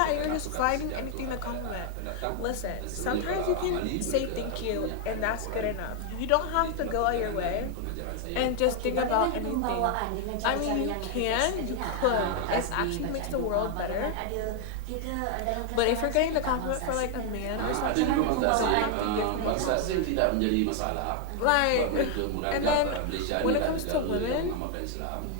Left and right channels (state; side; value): different; both; correlation 0.00